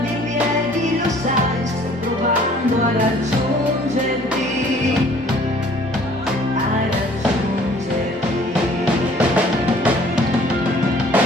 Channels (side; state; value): both; normal; correlation 0.55